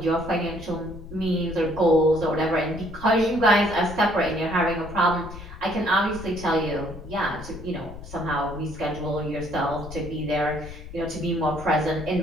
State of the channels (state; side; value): noise; left; rumble, 13 dB below the sound